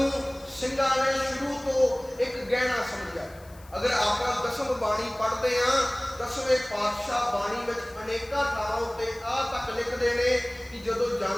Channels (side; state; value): left; noise; hiss, 25 dB below the sound